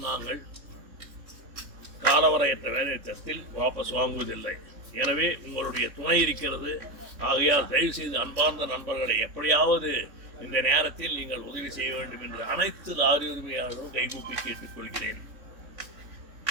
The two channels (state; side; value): late; left; 3.6 ms